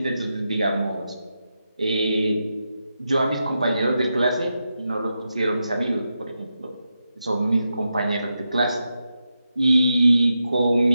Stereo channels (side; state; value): both; inverted; correlation -0.87